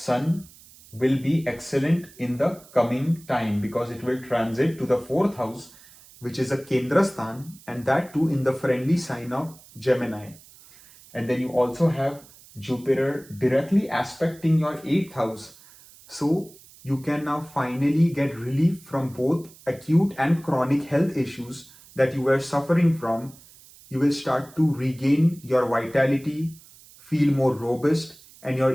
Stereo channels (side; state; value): right; noise; hiss, 23 dB below the sound